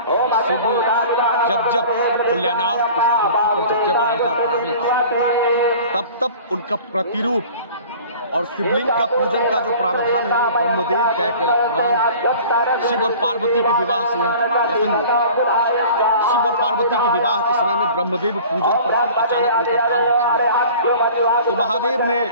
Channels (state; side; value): inverted; both; correlation -0.44